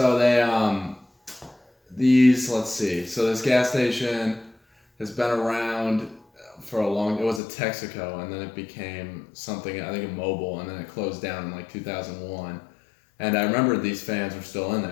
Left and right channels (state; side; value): drops out; right; at 7.4 s